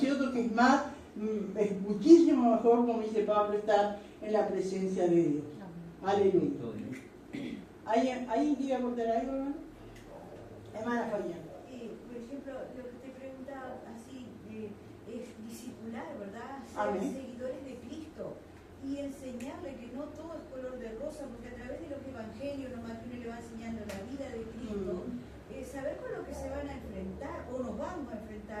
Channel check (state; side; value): identical; both; correlation 1.00